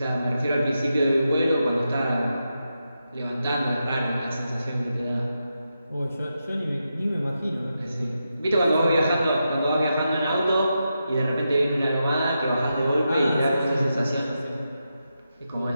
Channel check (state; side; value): inverted; both; correlation -0.87